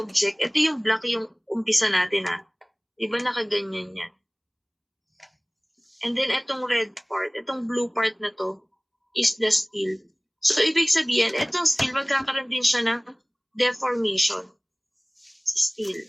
Ito yung black yung umpisa natin Di ba nakaganyan yan? And then itong red part, itong blue part na to is the steel. So, ibig sabihin, itong steel magkakaroon din siya ng deformation. Si steel.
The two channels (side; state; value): both; identical; correlation 1.00